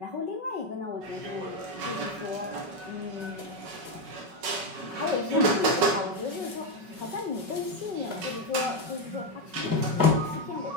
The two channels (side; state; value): left; late; 5.3 ms